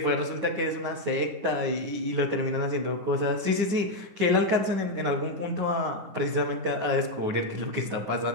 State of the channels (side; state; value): left; late; 9.5 ms